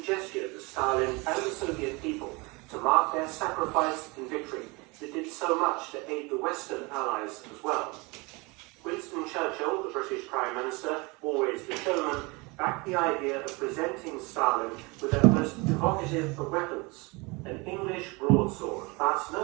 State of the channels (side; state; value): left; quieter; 26.6 dB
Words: gesture to Stalin and the Soviet people to mark their sacrifice and victory that did so much to aid the Western Allies as well. Winston Churchill, the British Prime Minister, always the showman, backed the idea of presenting Stalin with their most evocative of weapons, an English broadsword, but